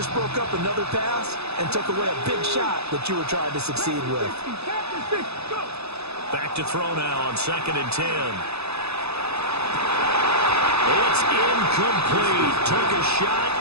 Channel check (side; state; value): left; late; 0.79 ms